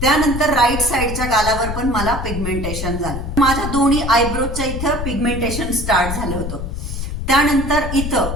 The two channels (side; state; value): left; noise; rumble, 5 dB below the sound